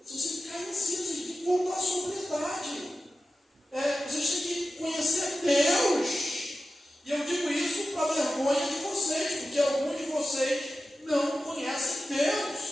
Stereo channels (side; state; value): both; normal; correlation 0.93